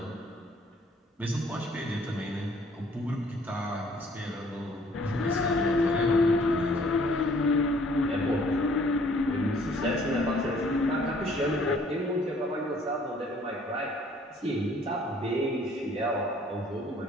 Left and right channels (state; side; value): normal; both; correlation 0.59